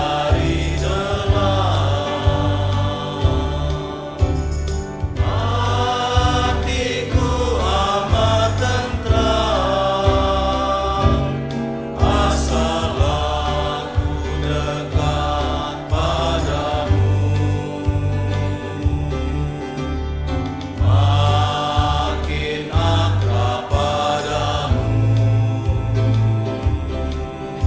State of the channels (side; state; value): both; identical; correlation 1.00